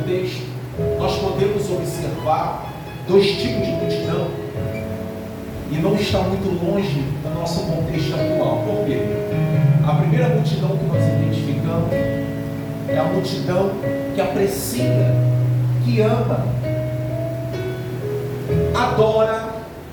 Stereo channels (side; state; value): both; identical; correlation 1.00